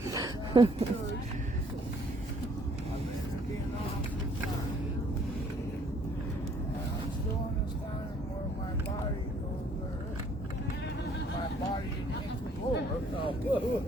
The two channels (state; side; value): normal; both; correlation 0.62